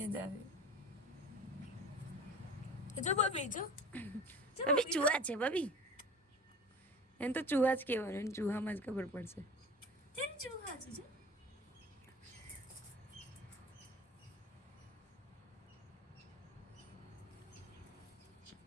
જ આવે જો બબી જો બબી ચૂહા છે બબી એને તો ચૂહા જ કહેવાનું એને ચૂહામાં જ ખબર પડશે તેમ ચૂહા છે જો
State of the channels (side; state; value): both; normal; correlation 0.39